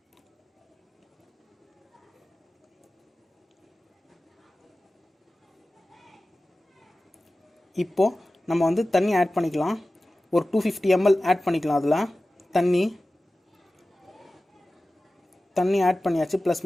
இப்போது நம்ம வந்து தண்ணி ஆட் பண்ணிக்கலாம். ஒரு 250 ml ஆட் பண்ணிக்கலாம். அதில் தண்ணி ஆட் பண்ணியாச்சு. ப்ளஸ்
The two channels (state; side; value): normal; both; correlation 0.96